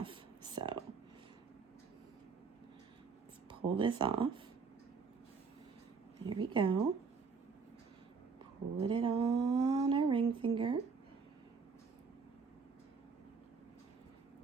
So let's pull this off. There we go. Put it on our ring finger.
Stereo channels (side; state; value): left; quieter; 5.2 dB